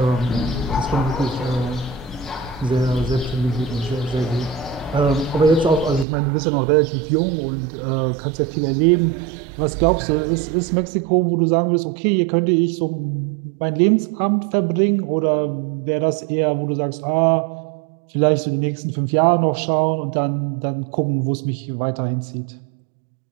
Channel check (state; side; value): drops out; left; at 6.1 s